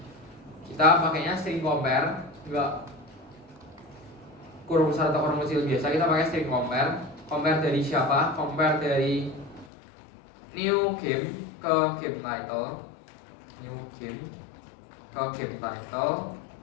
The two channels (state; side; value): drops out; right; at 9.7 s